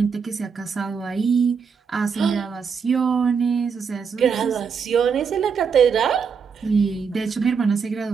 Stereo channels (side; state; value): left; quieter; 6.1 dB